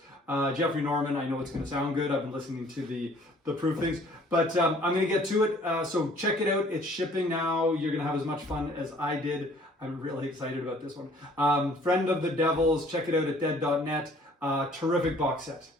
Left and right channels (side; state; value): both; normal; correlation 0.56